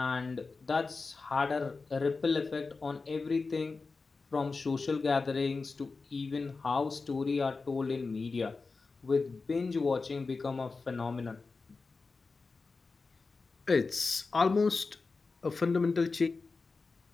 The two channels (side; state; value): right; quieter; 4.2 dB